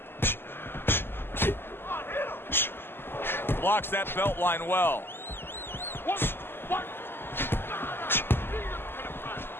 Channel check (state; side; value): late; right; 0.11 ms